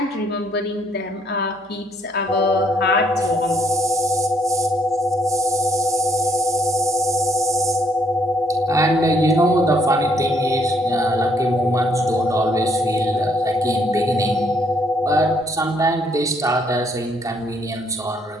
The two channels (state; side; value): normal; both; correlation 0.68